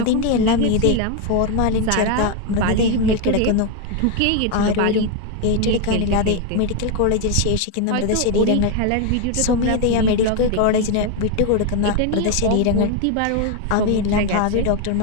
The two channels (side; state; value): both; different; correlation 0.01